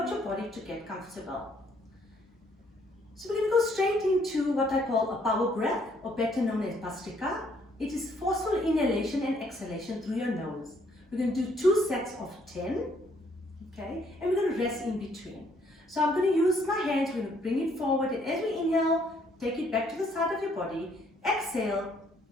your body to get comfortable. So we're going to go straight into what I call a power breath, or better known as Bhastrika. It is forceful inhalation and exhalation through your nose. We're going to do 2 sets of 10, okay, and we're going to rest in between. So I'm going to use my hands, we're going to bring it forward, and as we inhale, take it back to the side of your body, exhale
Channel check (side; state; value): both; normal; correlation 0.66